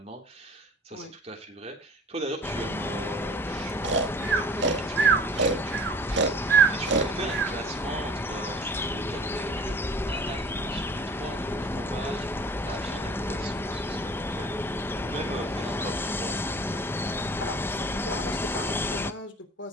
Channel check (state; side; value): normal; both; correlation 0.44